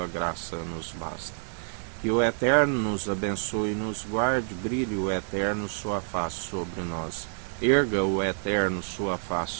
graça nos basta. Que o Eterno nos abençoe e nos guarde, brilhe o Eterno sua face sobre nós. Erga o Eterno sua face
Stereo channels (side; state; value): left; silent; 58 dB below the other